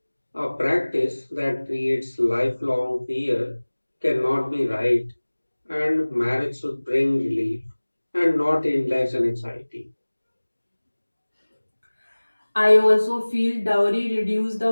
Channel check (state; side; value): inverted; both; correlation -1.00